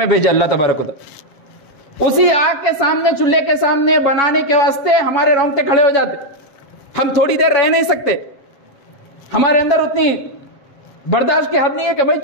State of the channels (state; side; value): late; right; 7.6 ms